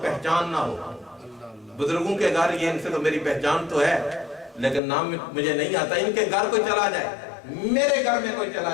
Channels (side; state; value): right; drops out; at 4.8 s